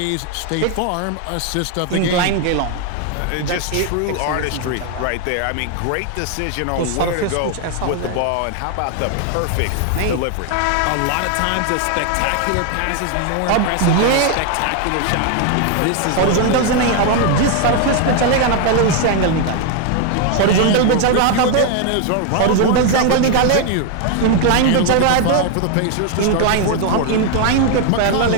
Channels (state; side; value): different; both; correlation 0.01